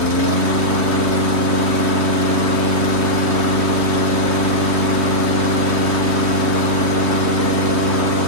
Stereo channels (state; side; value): late; left; 3.2 ms